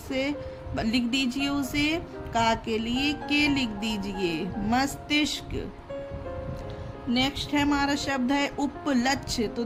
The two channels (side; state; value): both; identical; correlation 1.00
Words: लिख दीजिए उसे। का के लिए के लिख दीजिए, मस्तिष्क। नेक्स्ट है हमारा शब्द है उपलक्ष्य। तो